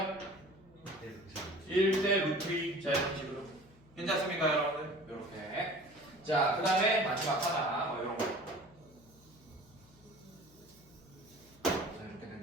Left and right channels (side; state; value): left; noise; hum, 26 dB below the sound